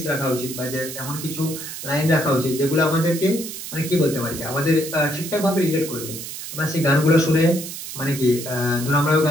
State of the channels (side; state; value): right; noise; hiss, 9 dB below the sound